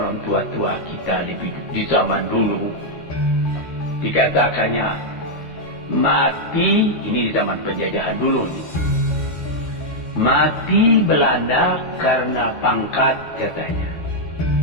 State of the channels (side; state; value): right; late; 13 ms